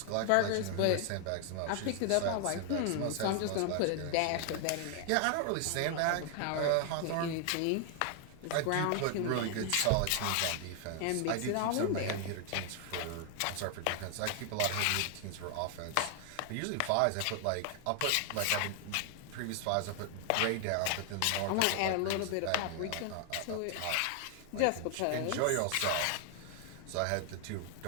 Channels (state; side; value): different; both; correlation 0.00